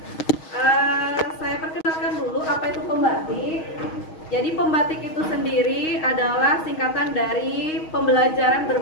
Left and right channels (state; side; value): late; right; 6.3 ms